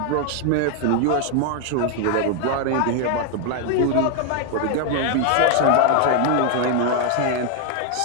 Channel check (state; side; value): different; both; correlation 0.00